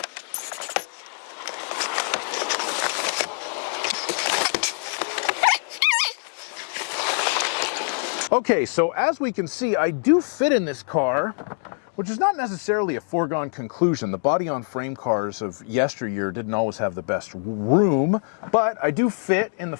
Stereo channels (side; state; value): right; silent; 55 dB below the other